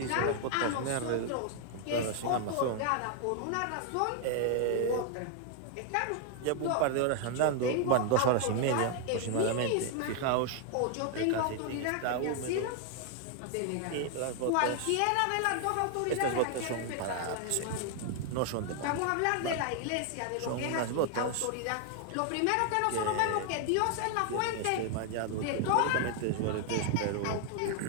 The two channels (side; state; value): both; different; correlation 0.00